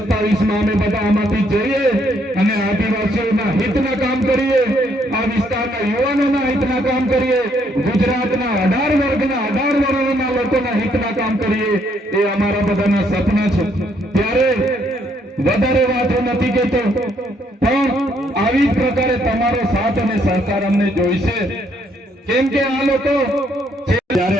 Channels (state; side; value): normal; both; correlation 0.70